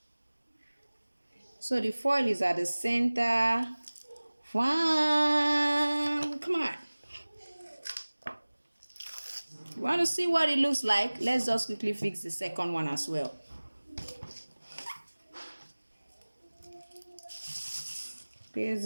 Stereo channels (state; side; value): inverted; both; correlation -1.00